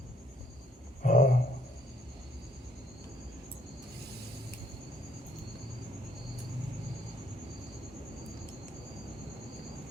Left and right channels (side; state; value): both; normal; correlation 0.66